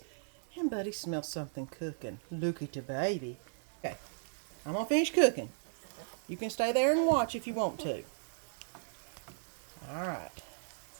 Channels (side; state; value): left; silent; digital silence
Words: And Buddy smells something cooking. Look at the baby. Okay, I'm going to finish cooking. You can stay there and watch if you want to. Alright.